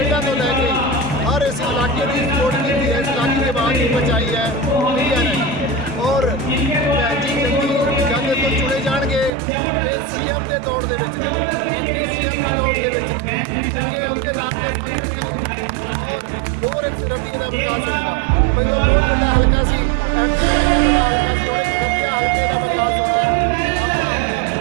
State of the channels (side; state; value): left; drops out; at 9.3 s